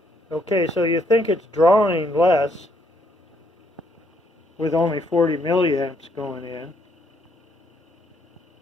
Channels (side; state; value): both; normal; correlation 0.71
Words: Okay, so you think it's drawing less with only 40 milliamps going in.